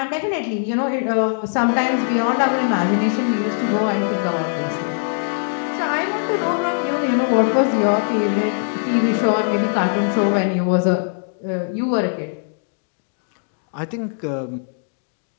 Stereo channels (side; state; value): right; silent; digital silence